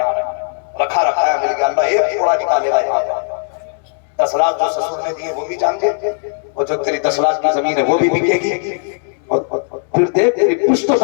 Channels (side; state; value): right; silent; digital silence